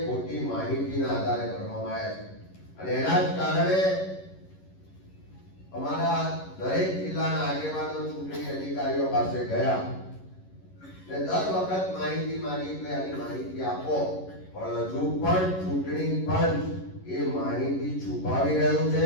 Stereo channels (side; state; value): right; late; 11 ms